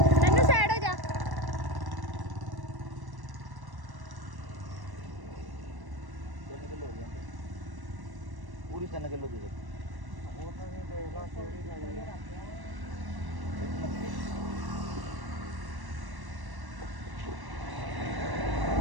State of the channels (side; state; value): left; late; 1.1 ms